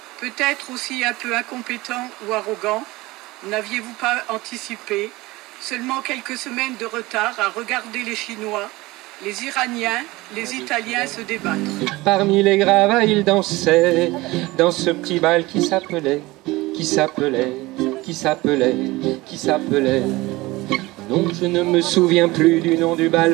peut-être aussi un peu incompétent ou arrogant. N'aviez-vous pas anticipé? Seulement quelques semaines de retard à regarder les Chinois, les Iraniens, les Italiens se débattre. Parmi les gravats, il dansait dans ce petit bal qui s'appelait. Non, je ne me souviens plus du nom du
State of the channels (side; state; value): left; quieter; 20.5 dB